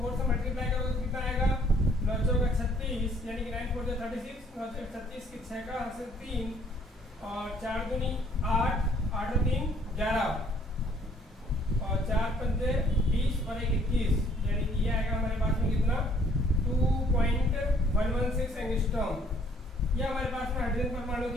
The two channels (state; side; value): normal; both; correlation 0.61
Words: से मल्टीप्लाई करोगे तो कितना आएगा 9 चौका 36, यानी कि 9 4 36, 9 36 की 6 का हासिल 3 और 4 दूनी 8, 8 और 3 11 और 4 पंजे 20 और 1 21, यानी कि ये आएगा हमारे पास में कितना 2.116 एंगस्ट्रॉम। यह हमारे पास में हाइड्रोजन परमाणु